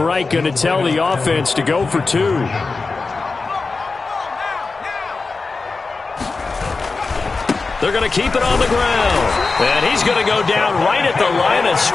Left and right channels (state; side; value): quieter; right; 4.1 dB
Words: going to tell the offense to go for 2. They're going to keep it on the ground. And he's going to go down right at the line of